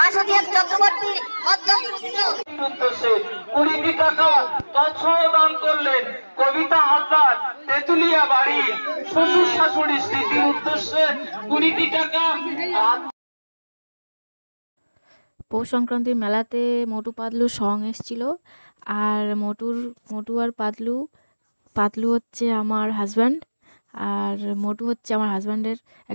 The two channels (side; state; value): both; inverted; correlation -1.00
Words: চক্রবর্তী মধ্যম পুত্র। উদ্দেশ্যে 20টি টাকা তৎসহ দান করলেন কবিতা হালদার তেতুলিয়া বাড়ি শ্বশুর শাশুড়ির স্মৃতির উদ্দেশ্যে 20টি টাকা। পৌষ সংক্রান্তির মেলাতে মোটু পাতলুর সং এসেছিল। আর মোটু আর পাতলু হচ্ছে আমার হাজব্যান্ড, আর মোটু হচ্ছে আমার হাজব্যান্ডের